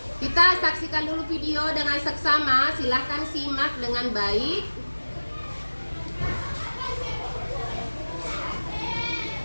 Kita saksikan dulu video dengan seksama. Silahkan simak dengan baik.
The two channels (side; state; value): both; inverted; correlation -1.00